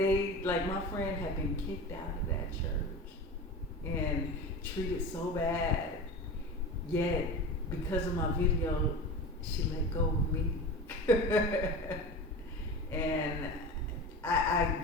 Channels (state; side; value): normal; both; correlation 0.30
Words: like my friend had been kicked out of that church and treated so bad. Yet, because of my video, she let go of me. And I